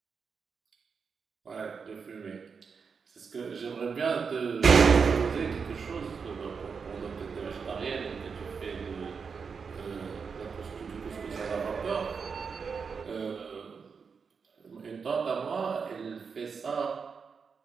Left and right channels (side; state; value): left; quieter; 5.7 dB